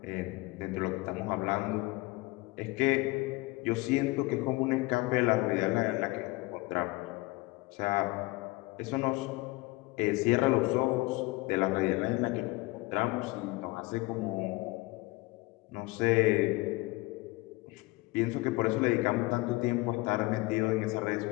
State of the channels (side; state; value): right; quieter; 22.4 dB